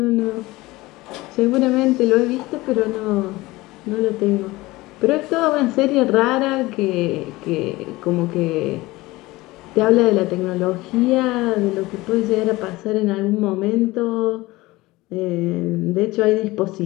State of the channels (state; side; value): quieter; right; 20.0 dB